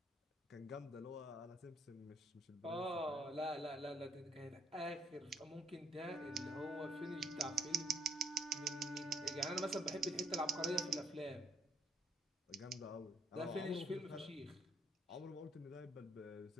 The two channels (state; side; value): normal; both; correlation 0.66